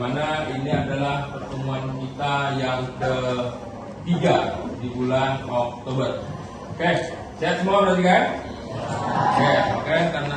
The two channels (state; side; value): identical; both; correlation 1.00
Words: mana ini adalah pertemuan kita yang ketiga di bulan Oktober. Oke, sehat semua berarti kan? Oke, karena